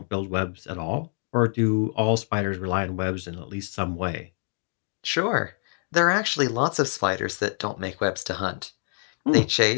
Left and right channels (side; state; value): right; silent; digital silence